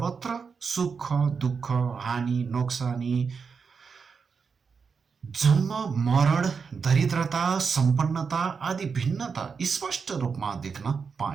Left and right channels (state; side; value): quieter; left; 5.6 dB